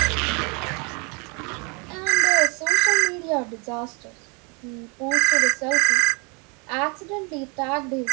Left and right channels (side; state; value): left; quieter; 32.5 dB